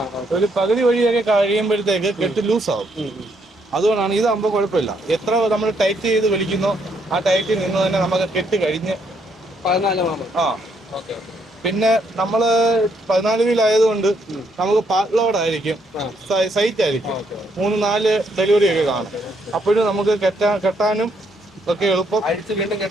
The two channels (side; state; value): both; normal; correlation 0.73